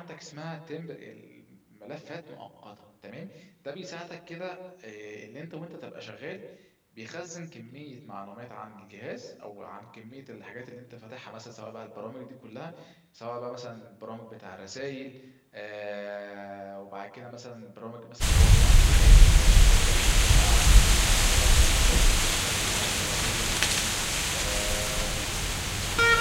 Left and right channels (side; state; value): both; identical; correlation 1.00